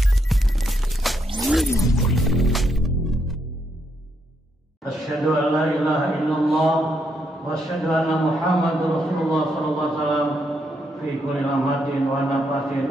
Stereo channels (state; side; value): normal; both; correlation 0.77